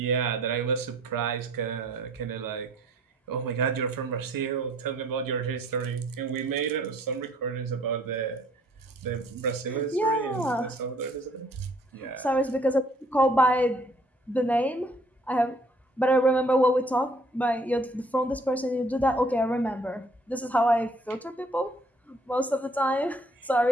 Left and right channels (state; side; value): normal; both; correlation 0.60